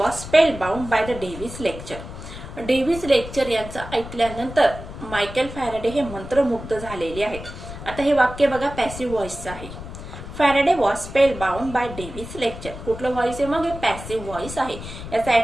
spellbound by the Davy's lecture. Davy's lecture यांचं ऐकल्यानंतर मायकेल फॅरेडे हे मंत्रमुग्ध झालेले आहेत. आता हे वाक्य बघा, पॅसिव्ह व्हॉइसचं आहे. Faraday was spellbound by Davy's lecture. कुठलं व्हॉइस आहे, मग हे पॅसिव्ह व्हॉइस आहे. याचा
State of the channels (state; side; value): noise; left; rumble, 11 dB below the sound